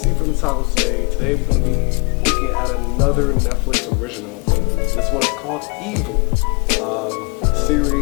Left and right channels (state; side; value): quieter; right; 33.4 dB